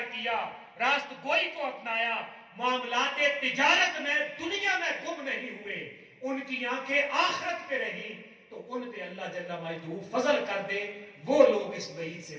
کیا, راست گوئی کو اپنایا, معاملات تجارت میں دنیا میں گم نہیں ہوئے, ان کی آنکھیں آخرت پہ رہی, تو ان پہ اللہ جل مجدہ فضل کر دے، وہ لوگ اس وعید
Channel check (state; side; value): identical; both; correlation 1.00